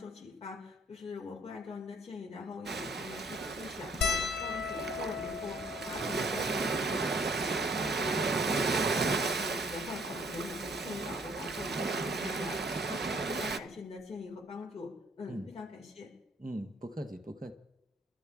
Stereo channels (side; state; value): both; normal; correlation 0.61